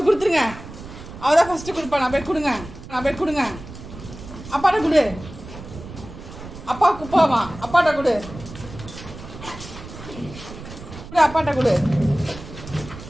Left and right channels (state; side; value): noise; right; rumble, 14 dB below the sound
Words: கொடுத்துருங்க. அவள் தான் ஃபஸ்ட்டு கொடுப்பா. நான் போய் கொடுங்க. நான் போய் கொடுங்க. அப்பாட்ட கொடு. அப்பா குப்பாமா அப்பாட்ட கொடு. அப்பாட்ட கொடு.